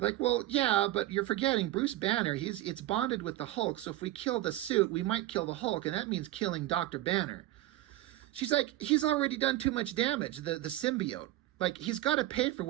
well, yeah, but you're forgetting Bruce Banner. It's bonded with the Hulk, so if we kill the suit, we might kill the Hulk, and that means killing Dr. Banner. She's like, he's already done too much damage, the symbiote. Like, he's got to pay for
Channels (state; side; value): quieter; left; 15.6 dB